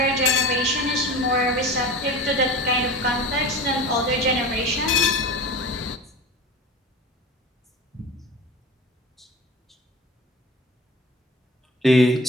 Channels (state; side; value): normal; both; correlation 0.34